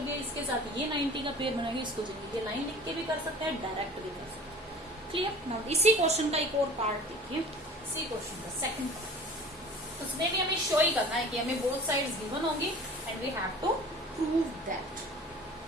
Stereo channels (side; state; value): both; normal; correlation 0.43